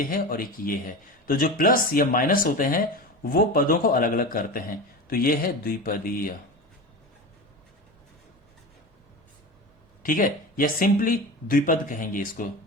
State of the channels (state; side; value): normal; both; correlation 0.28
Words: है और एक ये है। तो जो प्लस या माइनस होते हैं वो पदों को अलग अलग करते हैं, तो ये है द्विपदीय। ठीक है, या सिंपली द्विपद कहेंगे इसको,